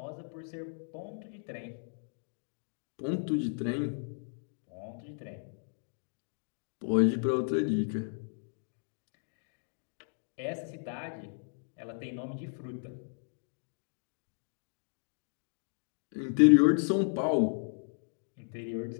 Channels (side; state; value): right; silent; digital silence